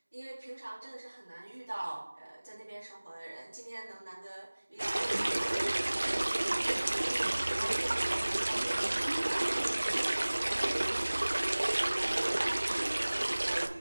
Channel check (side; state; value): both; inverted; correlation -1.00